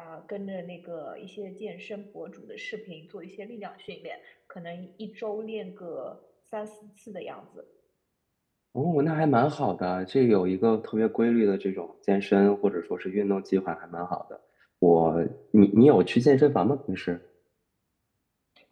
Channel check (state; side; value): identical; both; correlation 1.00